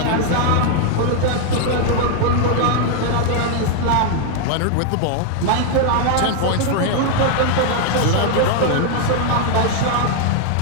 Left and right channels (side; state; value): both; different; correlation 0.00